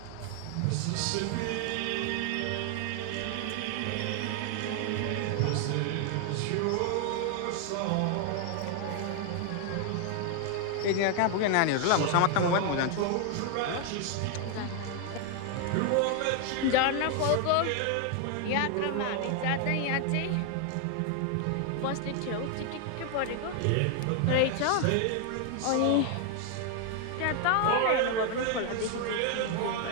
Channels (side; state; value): both; different; correlation 0.00